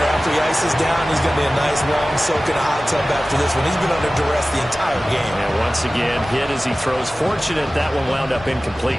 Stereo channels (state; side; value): normal; both; correlation 0.96